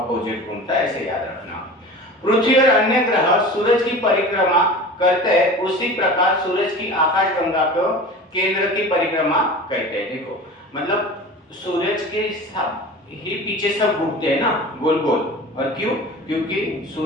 घूमता है, ऐसे याद रखना। पृथ्वी और अन्य ग्रह सूरज की परिक्रमा करते हैं, उसी प्रकार सूरज की आकाशगंगा को केंद्र की परिक्रमा करते हैं। देखो मतलब सूरज के ही पीछे सब घूमते हैं ना गोल गोल, और क्यों, क्योंकि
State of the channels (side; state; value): both; normal; correlation 0.36